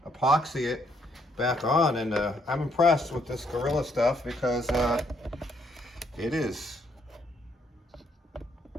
epoxy it back on, and I'm impressed with this Gorilla stuff because that is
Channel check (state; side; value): normal; both; correlation 0.71